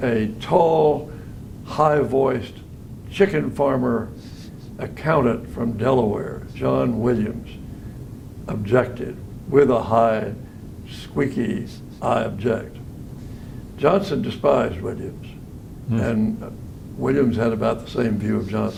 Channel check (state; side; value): identical; both; correlation 1.00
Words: a tall, high-voiced chicken farmer accountant from Delaware, John Williams, objected with a high, squeaky, "I object." Johnson despised Williams, and Williams had about the same view of